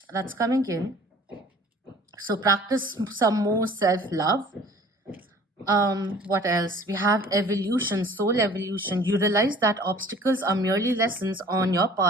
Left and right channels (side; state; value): both; normal; correlation 0.49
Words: That's coming in. So practice some more self-love. What else? We have evolution, soul evolution. You realize that obstacles are merely lessons on your